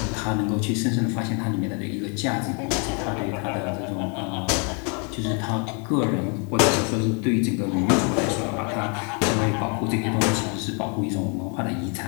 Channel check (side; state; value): right; quieter; 36.8 dB